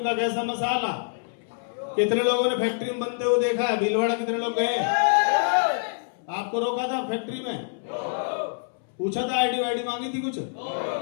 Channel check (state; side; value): silent; right; 61 dB below the other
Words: का कैसा मसाला? कितने लोगों ने फैक्ट्री में बनते हुए देखा है? भीलवाड़ा कितने लोग गए? आपको रोका था फैक्ट्री में? पूछा था आईडी वाईडी मांगी थी कुछ?